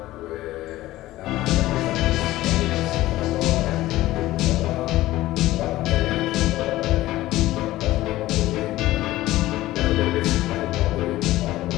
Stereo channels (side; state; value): right; quieter; 16.4 dB